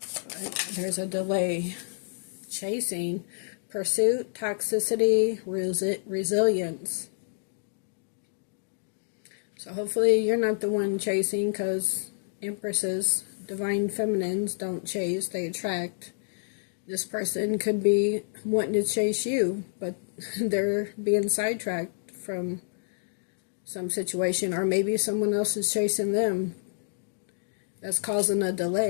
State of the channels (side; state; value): right; silent; digital silence